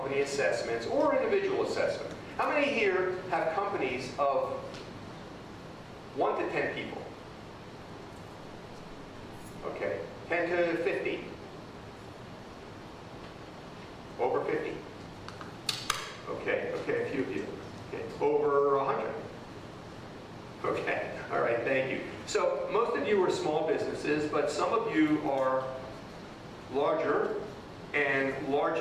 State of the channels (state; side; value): identical; both; correlation 1.00